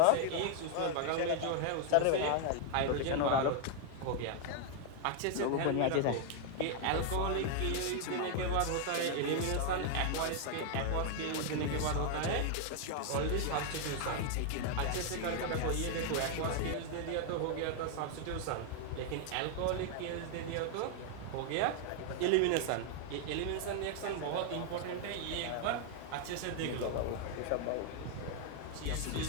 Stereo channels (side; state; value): both; different; correlation 0.00